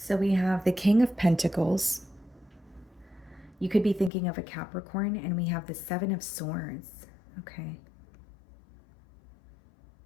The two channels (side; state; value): right; drops out; at 4.1 s